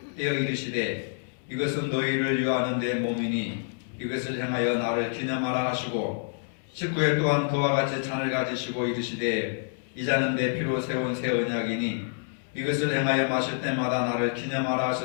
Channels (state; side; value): silent; right; digital silence